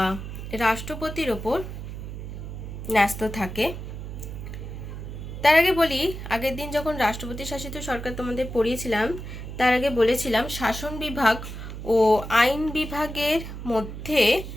রাষ্ট্রপতির ওপর ন্যস্ত থাকে। তার আগে বলি, আগের দিন যখন রাষ্ট্রপতি শাসিত সরকার তোমাদের পড়িয়েছিলাম, তার আগে বলেছিলাম শাসন বিভাগ ও আইন বিভাগের মধ্যে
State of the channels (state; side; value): noise; right; hum, 9 dB below the sound